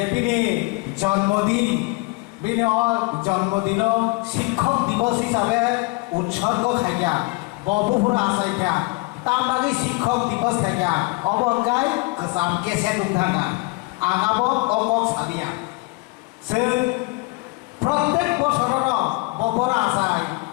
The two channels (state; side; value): quieter; right; 26.5 dB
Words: তিনি জন্মদিন জন্মদিন শিক্ষক দিবস হিসাবে উৎসর্গ খাইয়া বপুরা আসাইয়া তার বাকি শিক্ষক দিবস খাইয়া অবঙ্গাই গোসাম কেসে দুংথাঙ্গা আগাব অকক সাবিয়া সে প্রত্যেক বছরের বপুরা আসাই